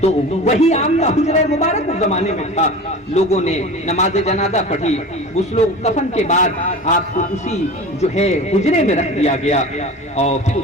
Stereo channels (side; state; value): both; normal; correlation 0.35